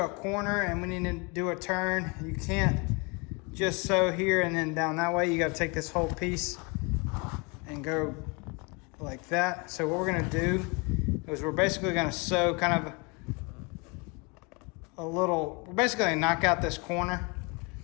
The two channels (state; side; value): quieter; right; 30.2 dB